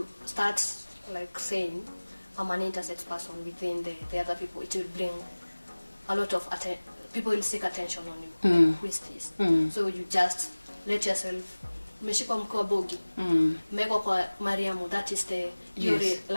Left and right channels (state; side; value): inverted; both; correlation -1.00